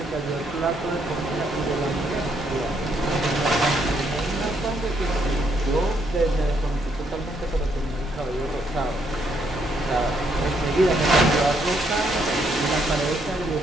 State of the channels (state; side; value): normal; both; correlation 0.73